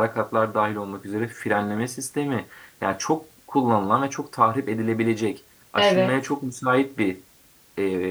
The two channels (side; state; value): both; identical; correlation 1.00